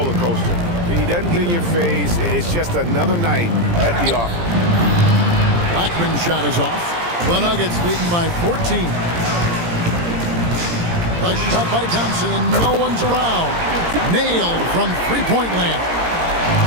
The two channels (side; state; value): left; late; 17 ms